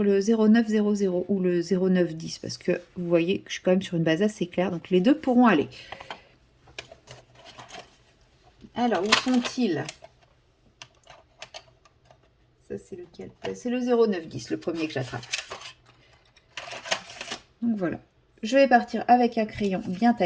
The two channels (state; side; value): identical; both; correlation 1.00